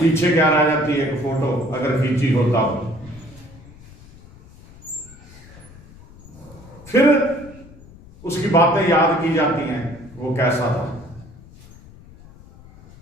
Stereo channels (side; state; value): left; noise; rumble, 22 dB below the sound